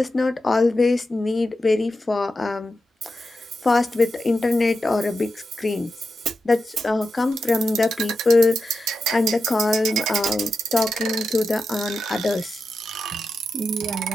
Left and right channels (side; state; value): both; normal; correlation 0.89